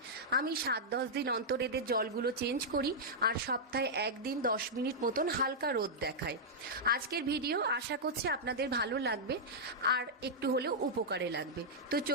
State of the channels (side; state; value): both; normal; correlation -0.07